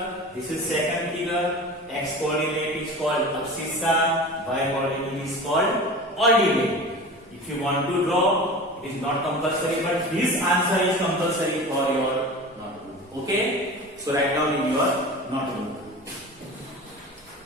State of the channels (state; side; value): normal; both; correlation 0.34